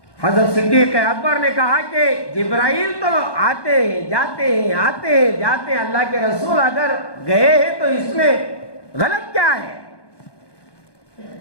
حضرت صدیق اکبر نے کہا کہ جبرائیل تو آتے ہیں جاتے ہیں, آتے ہیں جاتے ہیں, اللہ کے رسول اگر گئے ہیں تو اس میں غلط کیا ہے؟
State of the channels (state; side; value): late; right; 1.2 ms